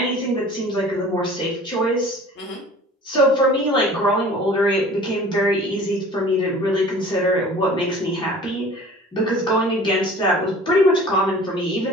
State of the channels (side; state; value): both; normal; correlation 0.45